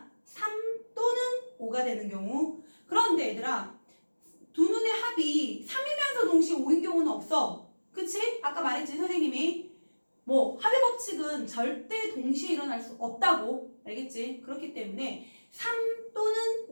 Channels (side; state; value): both; inverted; correlation -1.00